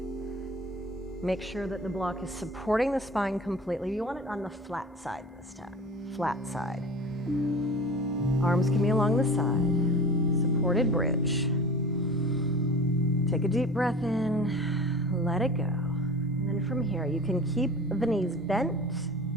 Make sure that the block is supporting the spine completely. You want it on the flat side this time, flat side. Arms can be along the side, supported bridge. Take a deep breath in, let it go. And then from here, you can keep the knees bent.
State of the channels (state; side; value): normal; both; correlation 0.38